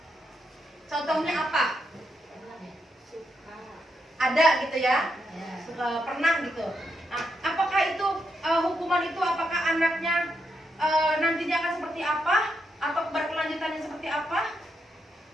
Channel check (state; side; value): normal; both; correlation 0.82